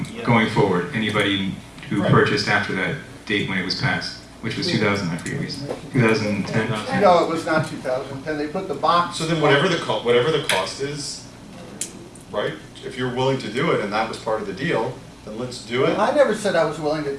going forward, anybody who Right. purchased after that date when it was passed, which was 2000, I forget, 2010. No, it was not 2010, they put the box. So then whatever the cost is, right? If you're willing to do it and that was part of the deal, then let's do it. I never said I was willing to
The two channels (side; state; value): both; identical; correlation 1.00